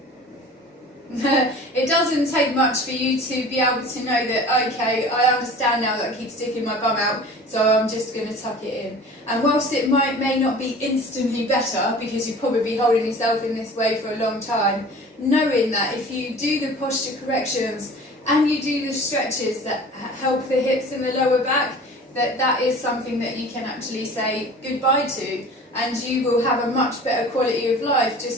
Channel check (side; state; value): both; normal; correlation 0.42